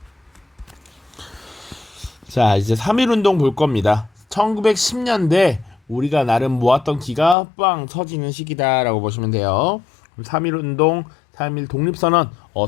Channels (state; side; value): drops out; right; at 7.4 s